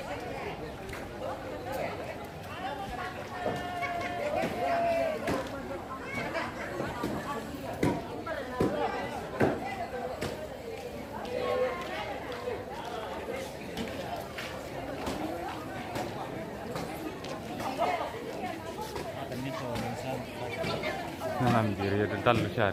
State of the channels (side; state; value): both; identical; correlation 1.00